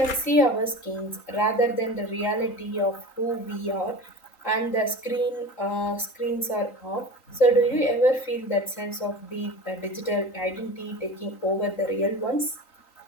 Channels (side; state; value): right; late; 3.9 ms